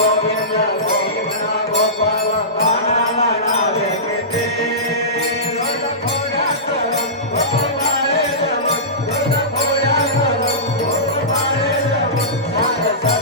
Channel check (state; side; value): normal; both; correlation -0.20